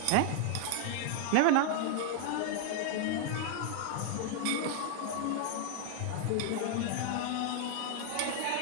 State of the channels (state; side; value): different; both; correlation 0.00